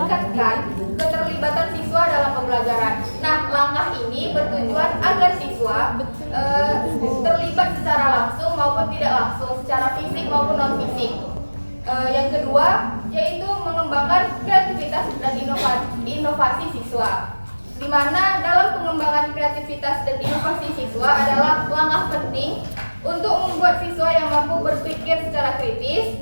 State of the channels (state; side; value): inverted; both; correlation -1.00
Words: keterlibatan siswa dalam pembelajaran. Nah, langkah ini bertujuan agar siswa terlibat secara langsung maupun tidak langsung, secara fisik maupun non fisik. Yang kedua, yaitu mengembangkan kreativitas dan inovasi siswa, di mana dalam pengembangan kreativitas dan inovasi siswa adalah langkah penting untuk membuat siswa yang mampu berpikir secara kritis,